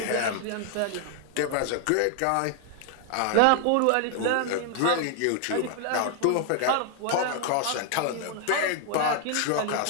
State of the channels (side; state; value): both; different; correlation 0.00